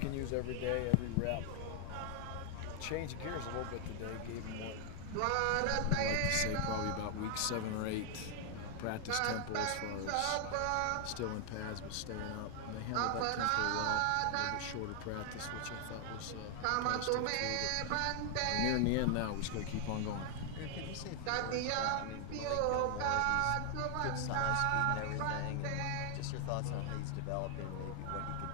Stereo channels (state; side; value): different; both; correlation 0.00